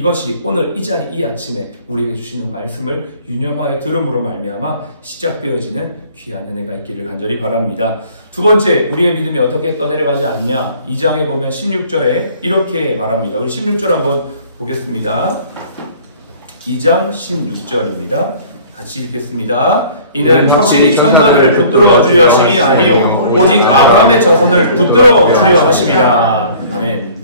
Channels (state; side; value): inverted; both; correlation -0.51